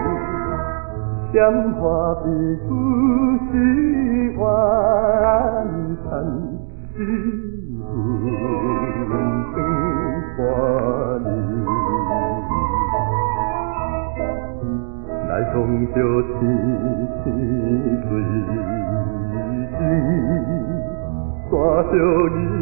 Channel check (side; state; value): left; silent; digital silence